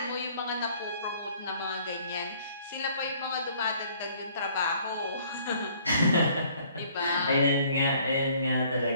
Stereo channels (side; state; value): both; inverted; correlation -0.59